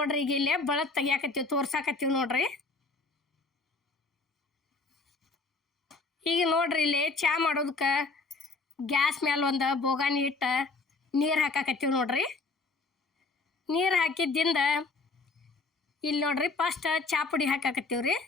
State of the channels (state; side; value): quieter; right; 3.8 dB